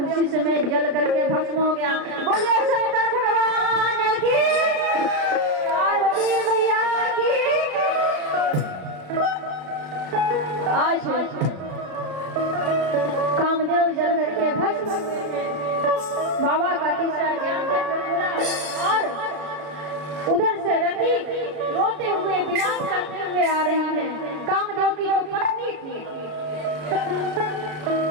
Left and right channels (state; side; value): late; left; 33 ms